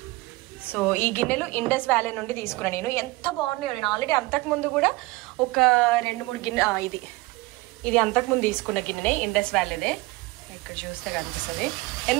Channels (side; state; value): left; quieter; 21.8 dB